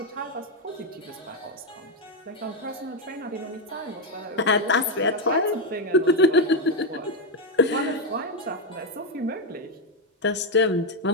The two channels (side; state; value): both; normal; correlation 0.05